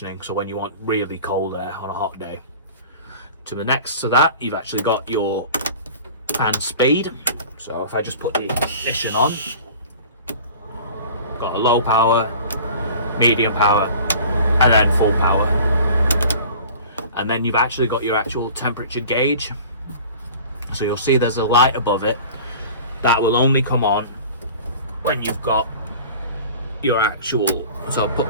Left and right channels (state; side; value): inverted; both; correlation -0.42